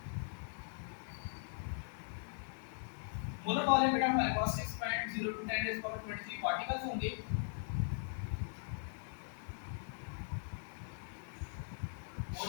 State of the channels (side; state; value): right; silent; digital silence